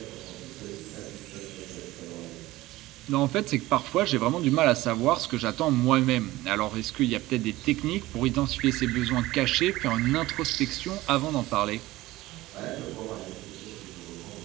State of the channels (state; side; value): quieter; left; 17.9 dB